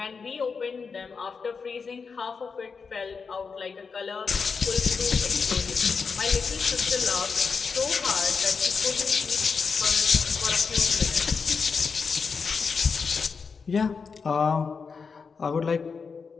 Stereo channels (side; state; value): right; quieter; 5.3 dB